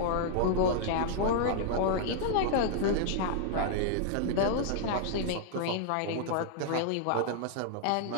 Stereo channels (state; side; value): different; both; correlation -0.01